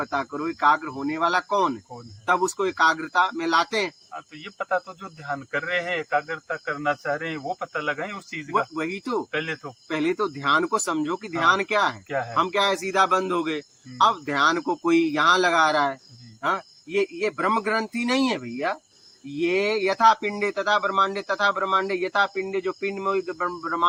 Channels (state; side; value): identical; both; correlation 1.00